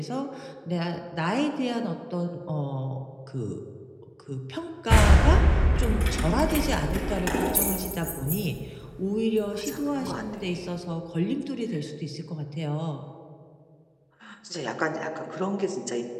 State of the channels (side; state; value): both; identical; correlation 1.00